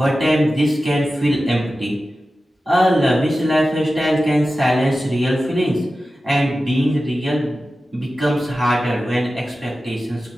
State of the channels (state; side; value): normal; both; correlation 0.94